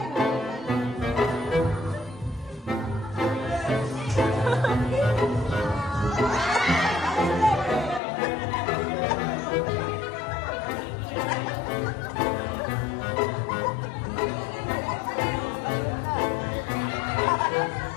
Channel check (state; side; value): drops out; right; at 8.0 s